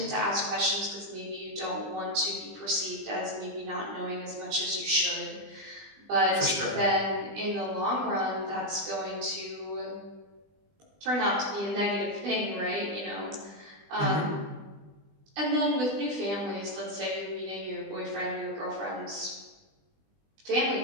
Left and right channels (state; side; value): late; left; 20 ms